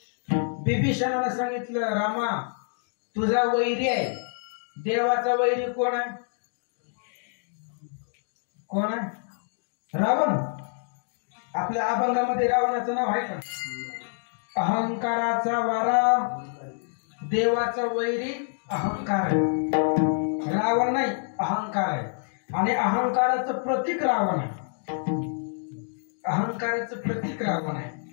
बिभीषणानं सांगितलं, रामा तुझा वैरी आहे. देवाचा वैरी कोण आहे? रावण. आपल्या अभंगामध्ये रावणाचं नाव आहे का? अहंकाराचा वारा, देवाचा वैरी अहंकार आहे. रावण नाही, अहंकार आहे. आणि अहंकाराचं प्रतीक रावण आहे.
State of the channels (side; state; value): right; silent; 60 dB below the other